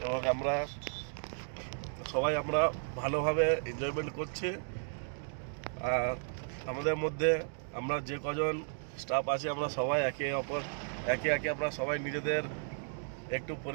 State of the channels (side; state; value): left; silent; digital silence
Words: এবং আমরা ভালোভাবে এনজয়মেন্ট করছি। আর আমাদের মধ্যে আমরা যে কজন স্টাফ আছে আমরা সবাই একে একে আমরা সবাই নিজেদের একটু